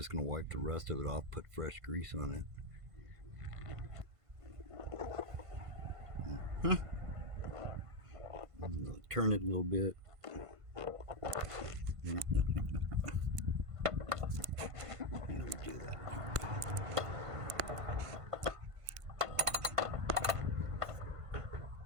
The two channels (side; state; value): left; late; 1.5 ms